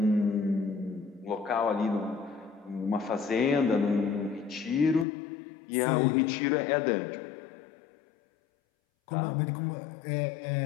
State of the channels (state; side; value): drops out; right; at 5.1 s